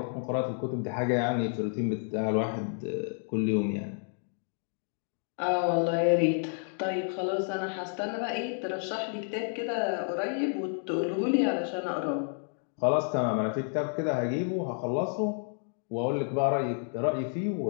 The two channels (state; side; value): silent; right; 58 dB below the other